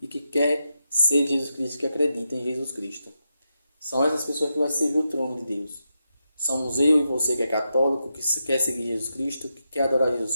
e que quer ser Jesus Cristo, que acredita em Jesus Cristo. São essas pessoas que vão servir o trono de Deus. Somos eu e você que é católico, que quer seguir Jesus Cristo, que quer adorar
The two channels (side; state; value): both; inverted; correlation -0.86